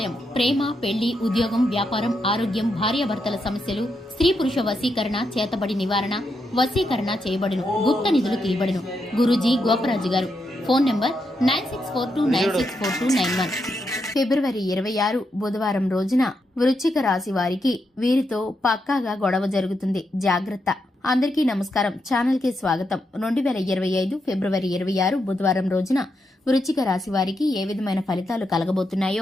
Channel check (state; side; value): normal; both; correlation 0.83